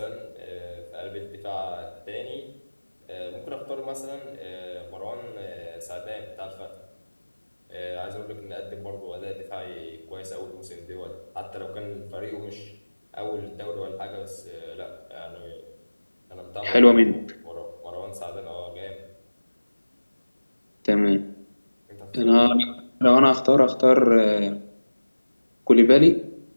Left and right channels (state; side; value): inverted; both; correlation -1.00